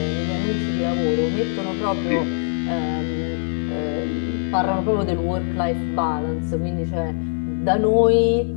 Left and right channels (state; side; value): silent; right; digital silence